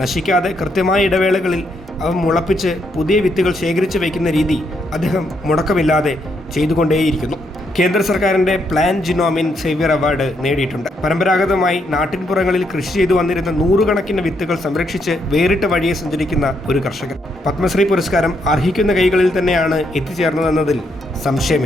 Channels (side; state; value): both; normal; correlation 0.76